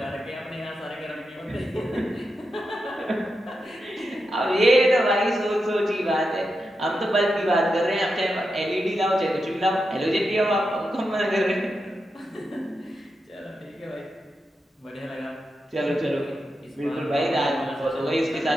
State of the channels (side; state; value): both; normal; correlation 0.87